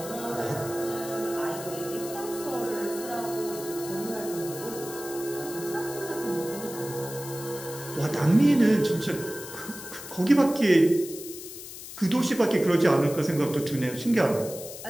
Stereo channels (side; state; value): left; noise; hiss, 12 dB below the sound